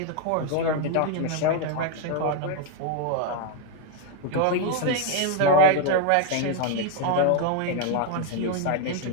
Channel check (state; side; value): different; both; correlation 0.01